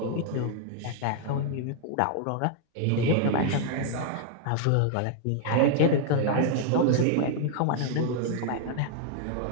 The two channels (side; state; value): both; different; correlation 0.00